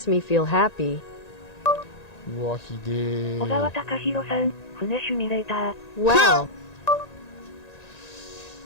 me feel happy. うわ、ひで小川ー。隆弘さん、船シミュレーター。 Wow.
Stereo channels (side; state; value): right; late; 1.9 ms